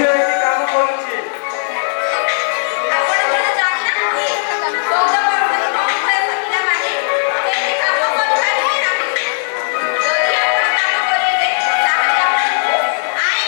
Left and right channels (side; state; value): right; silent; digital silence